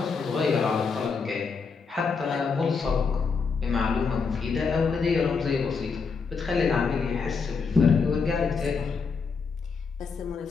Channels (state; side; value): quieter; right; 5.2 dB